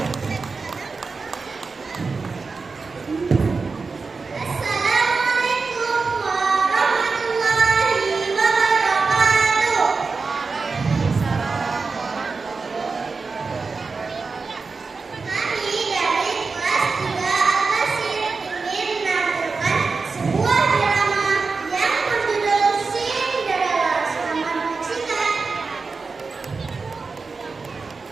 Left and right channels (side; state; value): left; quieter; 4.4 dB